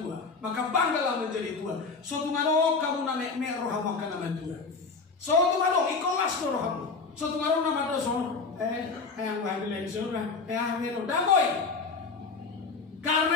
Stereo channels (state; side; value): quieter; right; 4.5 dB